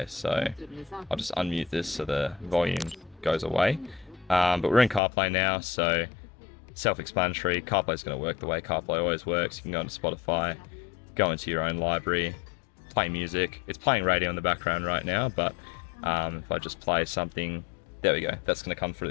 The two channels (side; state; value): right; drops out; at 5.0 s